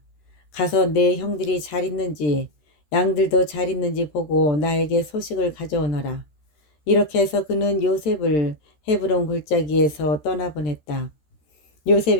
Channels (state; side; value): late; right; 13 ms